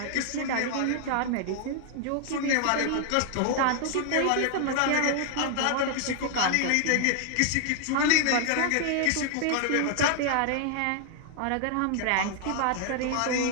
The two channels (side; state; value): both; different; correlation 0.00